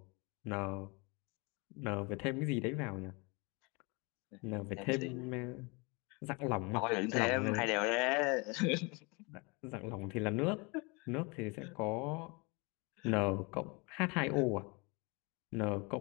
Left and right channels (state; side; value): quieter; right; 28.8 dB